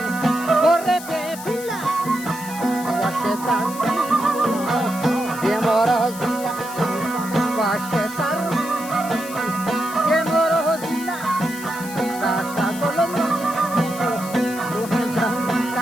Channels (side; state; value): left; noise; hiss, 13 dB below the sound